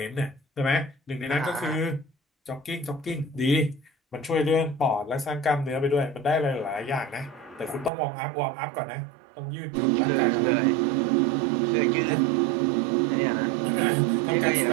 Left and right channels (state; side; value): drops out; left; at 7.9 s